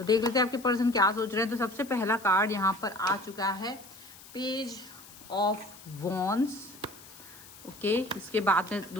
लेते हैं आपके पर्सन क्या सोच रहे हैं। तो सबसे पहला कार्ड यहाँ पर आ चुका है, पेज ऑफ वॉन्ड्स। ओके, इसके बाद में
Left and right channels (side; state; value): left; noise; hiss, 19 dB below the sound